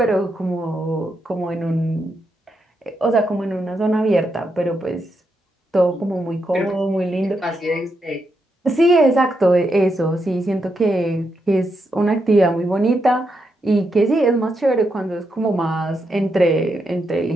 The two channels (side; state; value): both; normal; correlation 0.82